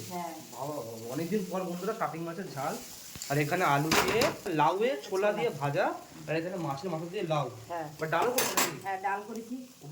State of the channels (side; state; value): both; identical; correlation 1.00